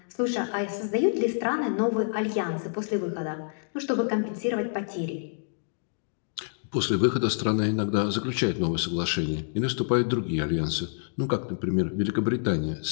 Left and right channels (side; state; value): right; silent; digital silence